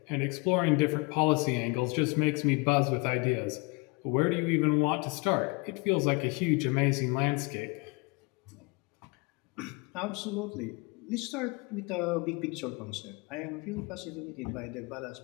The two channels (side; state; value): right; quieter; 28.9 dB